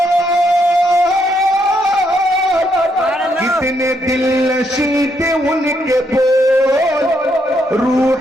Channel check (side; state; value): both; normal; correlation 0.75